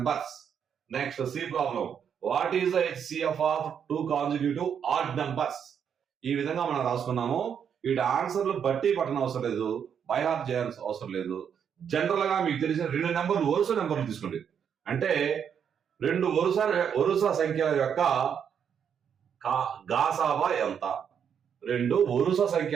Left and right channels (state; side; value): quieter; left; 7.9 dB